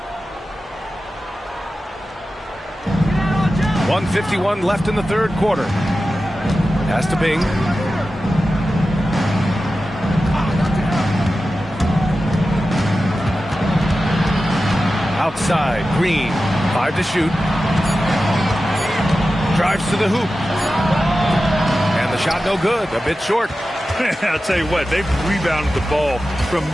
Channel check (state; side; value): normal; both; correlation 0.93